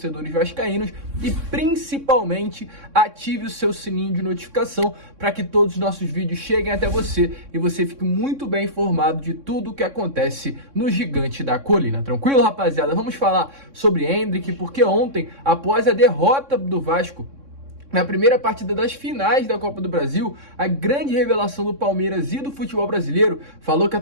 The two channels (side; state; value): left; late; 3.6 ms